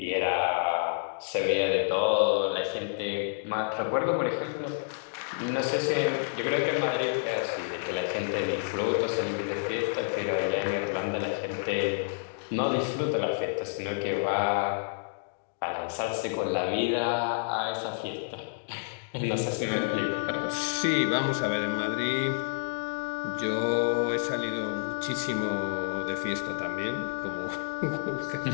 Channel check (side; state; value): right; silent; digital silence